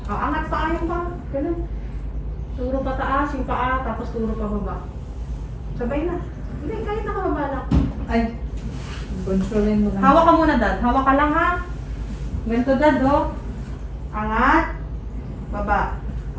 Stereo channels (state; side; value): identical; both; correlation 1.00